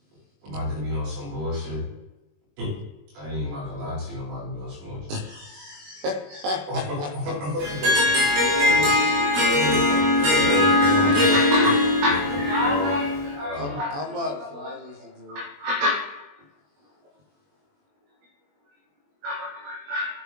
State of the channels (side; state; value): left; late; 21 ms